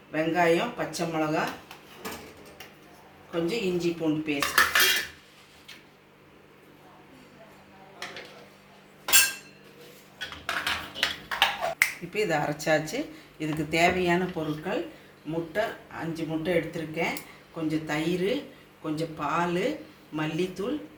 வெங்காயம், பச்சை மிளகா, கொஞ்சம் இஞ்சி பூண்டு பேஸ்ட். இப்போ இதை அரைச்சாச்சு. இதுக்கு தேவையான பொருட்கள்: முட்டை 5 முட்டை எடுத்திருக்கேன், கொஞ்சம் தயிர், கொஞ்சம் பால், மல்லித்தூள்,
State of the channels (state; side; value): identical; both; correlation 1.00